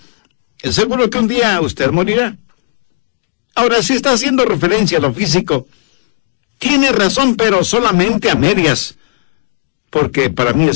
seguro que un día usted morirá. Ahora, si está haciendo referencia a lo físico, tiene razón, pero solamente a medias, porque para mí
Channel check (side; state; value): right; silent; digital silence